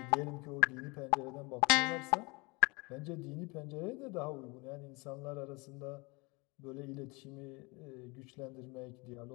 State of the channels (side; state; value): right; quieter; 27.0 dB